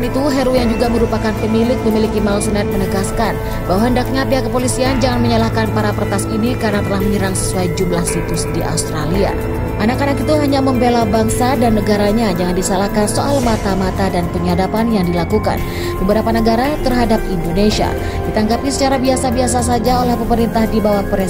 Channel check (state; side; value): identical; both; correlation 1.00